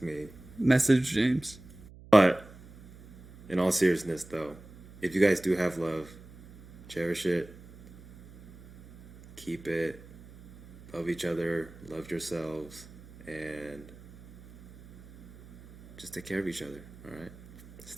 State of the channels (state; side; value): noise; right; hum, 20 dB below the sound